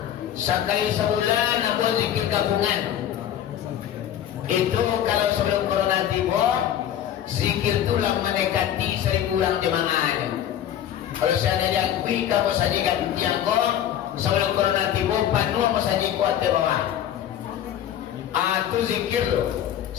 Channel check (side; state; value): right; quieter; 10.7 dB